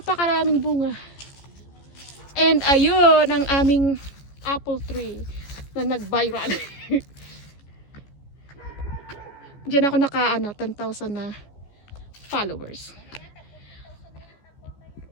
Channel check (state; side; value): late; right; 14 ms